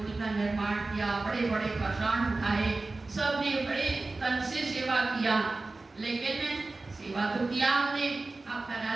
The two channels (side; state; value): left; quieter; 3.4 dB